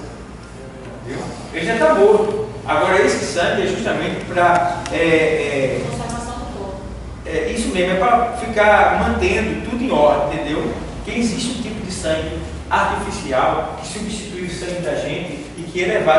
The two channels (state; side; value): identical; both; correlation 1.00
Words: Viu? Ele já está morto. Agora esse sangue é justamente para Conservação do corpo. isso mesmo, é para ficar mantendo tudo em ordem, entendeu? Que existe um tipo de sangue artificial que substitui o sangue da gente e que é